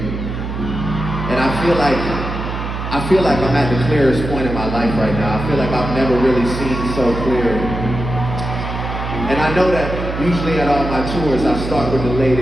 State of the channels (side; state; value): right; noise; hum, 5 dB below the sound